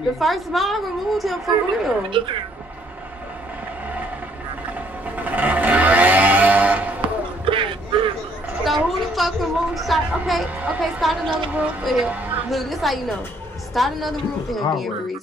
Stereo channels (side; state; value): both; normal; correlation 0.66